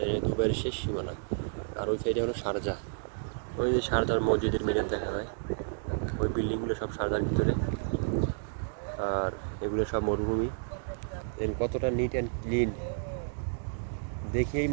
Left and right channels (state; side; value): silent; left; digital silence